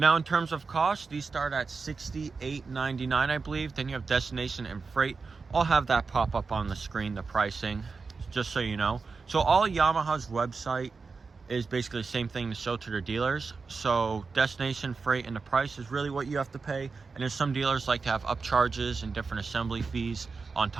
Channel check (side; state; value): left; quieter; 4.6 dB